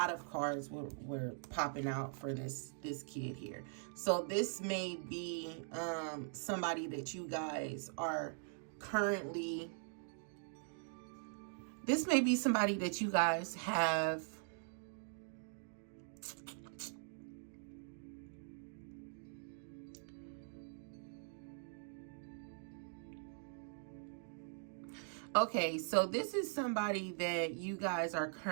of cards were popping out for this kid here. So this may be somebody that you guys are currently, this may be somebody that you guys have okay, so this is somebody that you guys are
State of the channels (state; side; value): silent; left; digital silence